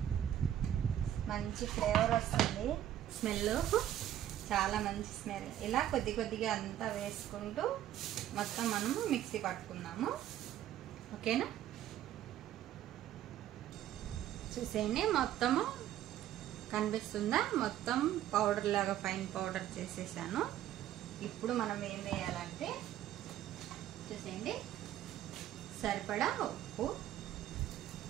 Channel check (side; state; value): left; quieter; 11.8 dB